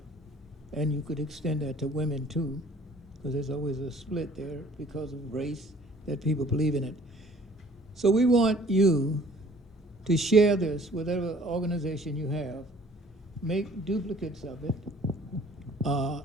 And you could extend that to women too, because there's always a split there because of race, that people believe in it. So we want you to share this with whatever organization you have, make duplicates of it,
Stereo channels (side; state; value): both; normal; correlation 0.54